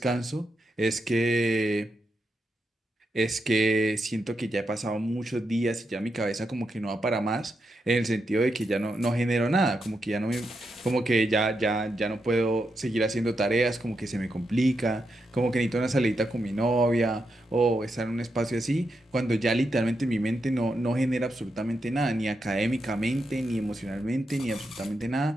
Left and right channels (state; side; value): normal; both; correlation 0.84